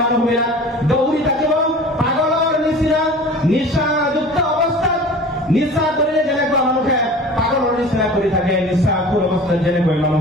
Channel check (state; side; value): normal; both; correlation 0.40